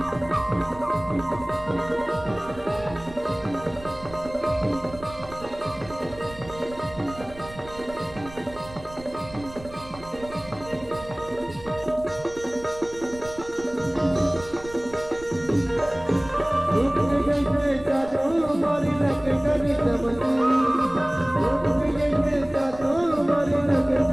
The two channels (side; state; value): right; noise; rumble, 18 dB below the sound